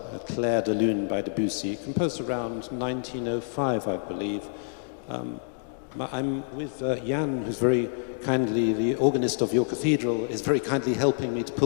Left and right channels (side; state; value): right; silent; digital silence